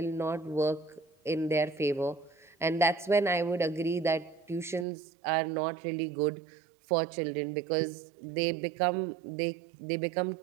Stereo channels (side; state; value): left; drops out; at 4.9 s